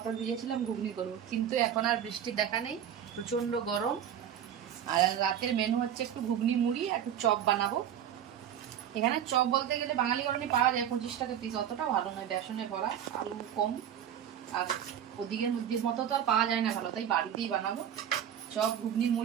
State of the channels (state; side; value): quieter; left; 9.6 dB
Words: ভিজিয়েছিলাম ঘুগনি করবো, কিন্তু এখন আর বৃষ্টির দেখা নেই, প্রচন্ড গরম। আর রাতের মেনু হচ্ছে একটু ঘুগনি মুড়ি আর একটু চপ বানাবো। এখানে চপ বলতে গেলে বাঙালি গরমে পাওয়া যায় 25 টাকা পিস, অতটা ভালো নয়, বেসনে ভরা, আলু কম, আর ওদিকের মতো তো আর পাওয়া যায় না ভালো, তাই বাড়িতেই বানাবো চপ ঘুগনি